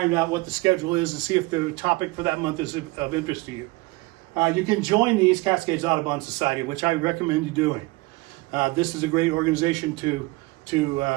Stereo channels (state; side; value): quieter; left; 23.0 dB